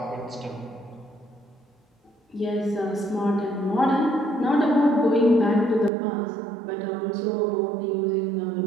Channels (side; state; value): left; drops out; at 5.9 s